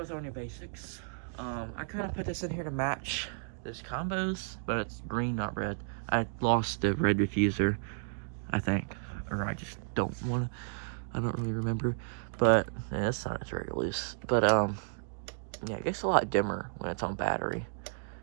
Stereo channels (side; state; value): left; silent; digital silence